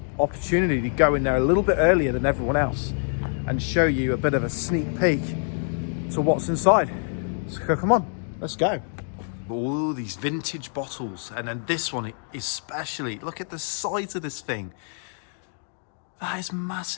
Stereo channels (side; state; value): right; silent; 61 dB below the other